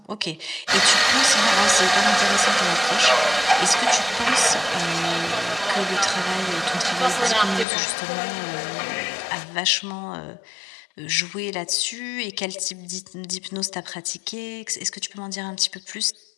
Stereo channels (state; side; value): drops out; right; at 7.7 s